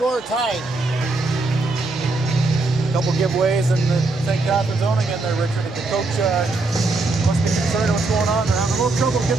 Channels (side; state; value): left; quieter; 3.3 dB